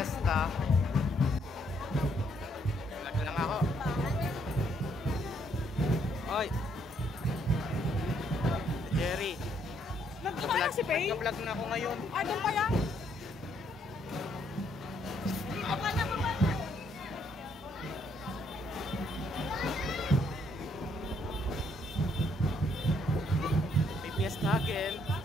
Vlog lang ako. Oy. Jerry. Nagkakala si Faye? Nagka-vlog na ako ngayon. Ah, doon pa yan? May fiesta again.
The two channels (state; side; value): normal; both; correlation 0.70